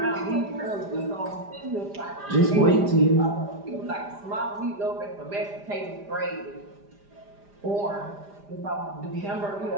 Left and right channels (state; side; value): late; left; 5.0 ms